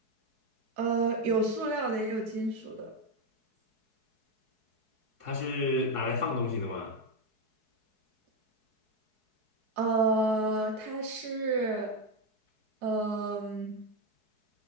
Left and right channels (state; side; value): late; left; 4.7 ms